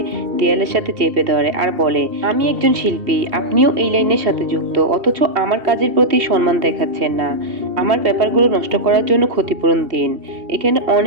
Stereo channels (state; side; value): late; left; 2.7 ms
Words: দেয়ালের সাথে চেপে ধরে আর বলে, আমি একজন শিল্পী, আপনিও এই লাইনের সাথে যুক্ত, অথচ আমার কাজের প্রতি সম্মান দেখাচ্ছেন না। আমার পেপারগুলো নষ্ট করার জন্য ক্ষতিপূরণ দিন। এখানে